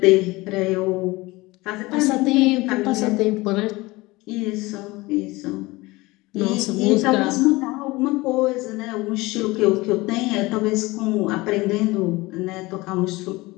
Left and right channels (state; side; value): quieter; right; 21.5 dB